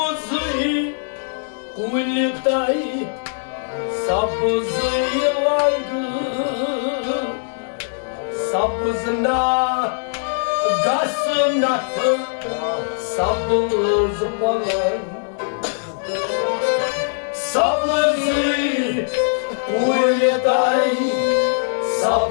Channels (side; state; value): right; silent; digital silence